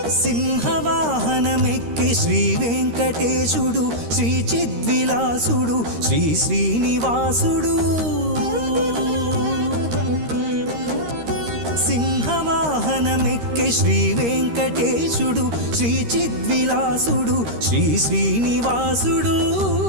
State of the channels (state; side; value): late; left; 13 ms